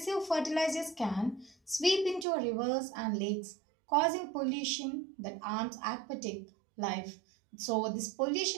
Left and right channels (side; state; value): left; drops out; at 2.2 s